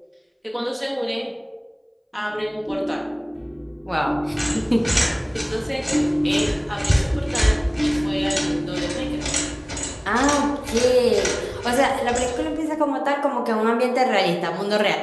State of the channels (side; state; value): both; identical; correlation 1.00